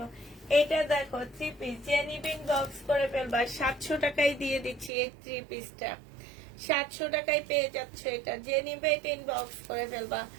এটা দেখো 3 পিস, যে নিবেন বক্স করে ফেলবা, 700 টাকায় দিয়ে দিচ্ছি এই 3 পিসটা, 700 টাকায় পেয়ে যাচ্ছ। এটা যে নিবে এটা ইনবক্স করে ফেলবা,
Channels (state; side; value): drops out; left; at 4.9 s